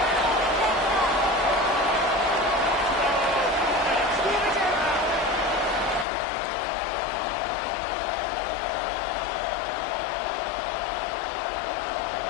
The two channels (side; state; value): right; drops out; at 6.1 s